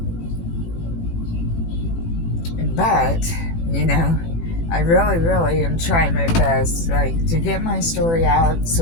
But, you know, I really am trying my best, like, to get my story out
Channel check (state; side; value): late; right; 18 ms